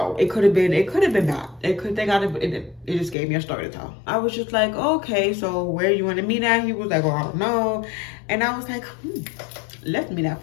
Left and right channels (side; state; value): right; drops out; at 3.2 s